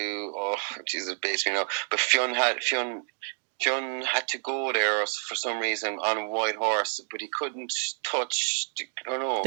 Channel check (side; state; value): left; silent; 58 dB below the other